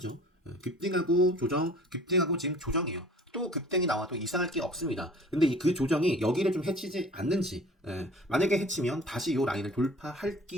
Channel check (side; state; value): both; normal; correlation 0.47